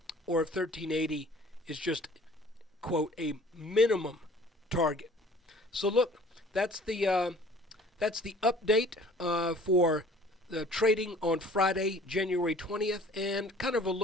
or if 1380 is just, quote, a minimum target. So look, that's the update for the trading on Friday, January 20th, and kind of a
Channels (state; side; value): normal; both; correlation 0.51